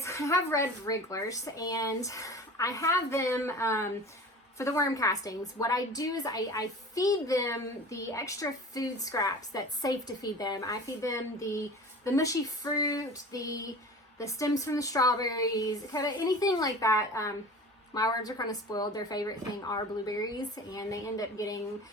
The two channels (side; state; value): both; normal; correlation 0.38